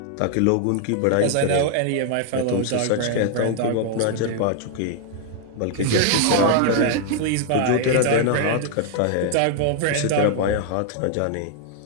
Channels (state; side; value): different; both; correlation 0.00